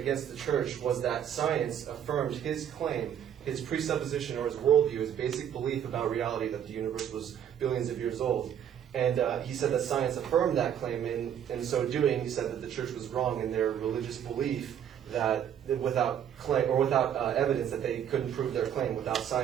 the church was that science affirmed his claim, his presupposition or his worldview, his basic belief about reality that the universe was billions of years old. And he said that science affirmed that claim, and in so doing, he said that the church was wrong in their religious belief that without claim or without evidence that they couldn't prove their claim. Without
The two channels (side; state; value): left; quieter; 9.3 dB